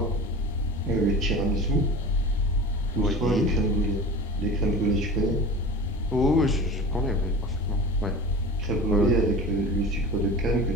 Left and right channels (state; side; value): normal; both; correlation 0.35